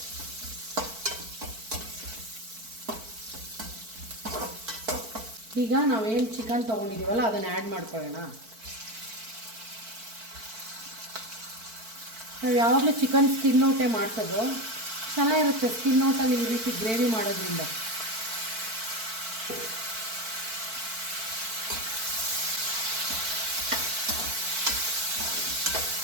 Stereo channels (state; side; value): late; left; 4.5 ms